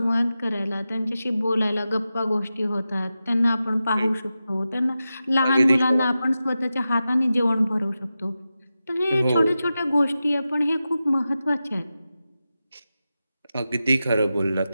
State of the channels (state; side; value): inverted; both; correlation -0.92